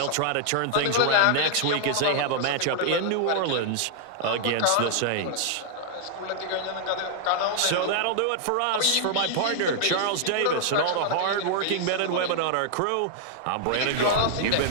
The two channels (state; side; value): different; both; correlation -0.01